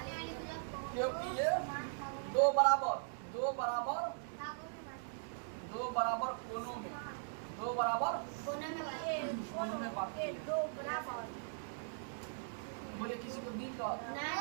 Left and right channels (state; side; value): silent; left; digital silence